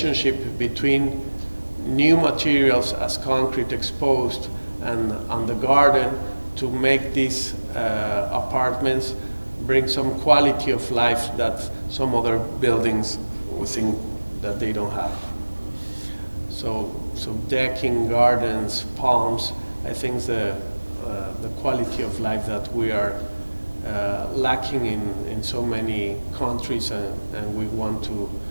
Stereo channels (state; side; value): inverted; both; correlation -1.00